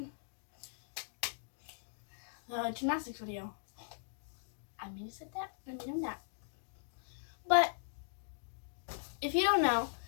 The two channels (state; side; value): silent; right; digital silence